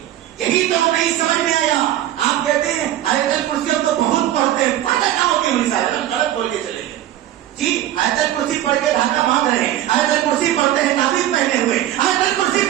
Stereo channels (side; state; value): left; quieter; 12.8 dB